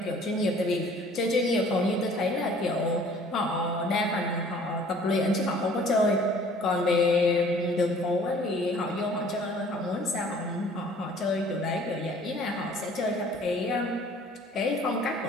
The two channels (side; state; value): both; normal; correlation 0.53